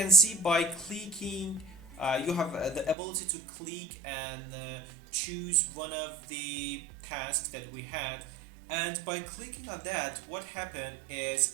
see, by clicking you have the ability to click and choose one of the tasks that we had, and by clicking on that, what happened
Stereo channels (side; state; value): left; drops out; at 3.0 s